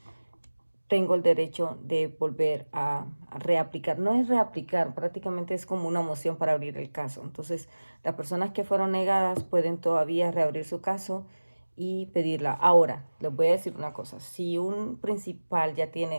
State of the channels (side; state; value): both; inverted; correlation -1.00